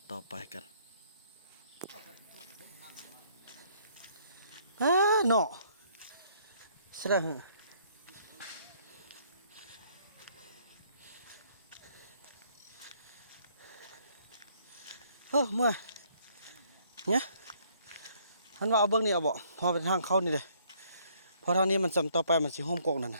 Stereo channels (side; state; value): both; inverted; correlation -0.65